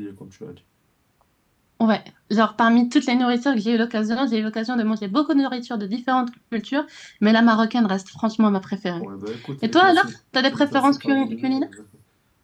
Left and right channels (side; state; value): both; identical; correlation 1.00